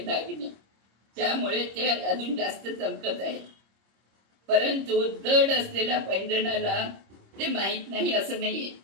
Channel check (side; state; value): left; late; 26 ms